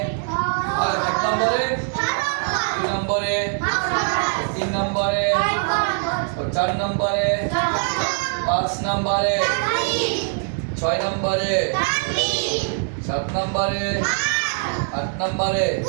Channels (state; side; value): silent; left; 55 dB below the other